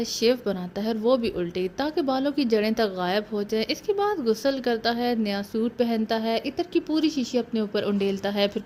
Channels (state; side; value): identical; both; correlation 1.00